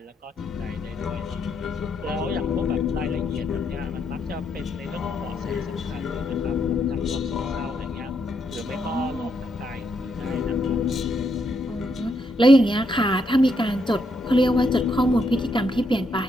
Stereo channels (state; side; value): normal; both; correlation 0.78